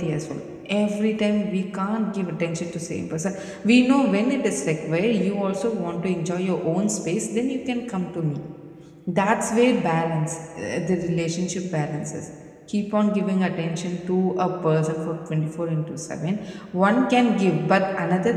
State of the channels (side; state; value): both; identical; correlation 1.00